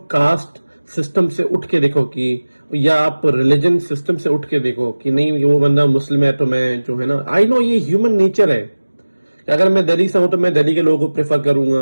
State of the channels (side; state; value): both; inverted; correlation -1.00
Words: कास्ट सिस्टम से उठ के देखो कि, या आप रिलीजन सिस्टम से उठ के देखो कि नहीं वो बंदा मुस्लिम है तो मैं जो है ना, आई नो ये ह्यूमन नेचर है। अगर मैं दिल्ली से हूं तो मैं दिल्ली के लोगों को प्रेफर करूंगा,